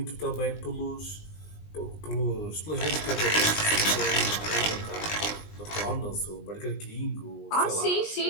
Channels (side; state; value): right; late; 19 ms